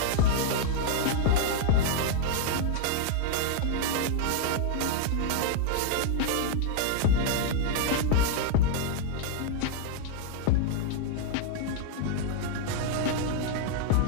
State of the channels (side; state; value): both; different; correlation 0.00